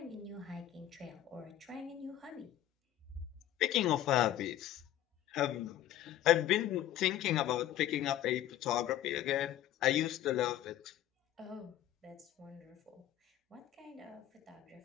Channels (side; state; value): right; quieter; 12.5 dB